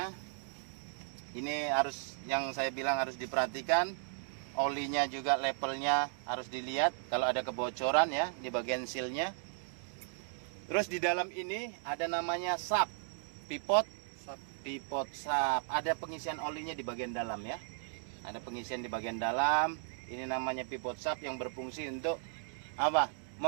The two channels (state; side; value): silent; left; digital silence